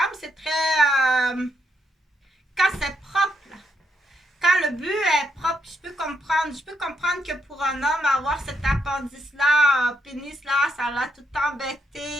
C'est très... quand c'est propre, là. Quand le but est propre, je peux comprendre que pour un homme, avoir cet appendice-là, pénis-là, ça l'a tout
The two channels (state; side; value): normal; both; correlation 0.78